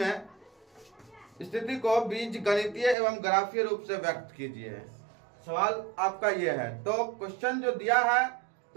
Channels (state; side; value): drops out; left; at 3.0 s